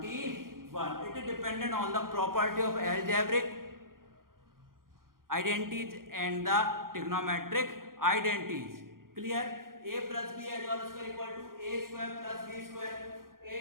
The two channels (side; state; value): left; late; 0.91 ms